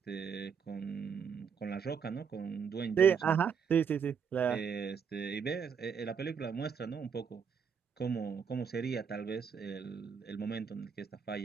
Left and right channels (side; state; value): left; quieter; 6.7 dB